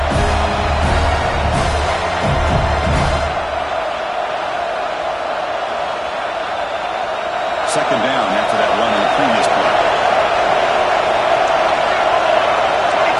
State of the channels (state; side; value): identical; both; correlation 1.00